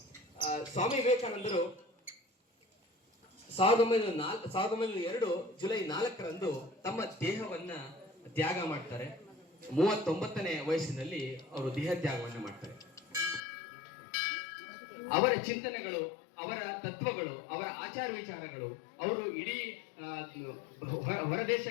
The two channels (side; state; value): right; drops out; at 13.4 s